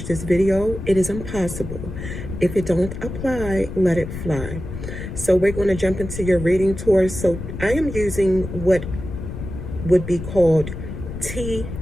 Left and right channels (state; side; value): noise; left; rumble, 8 dB below the sound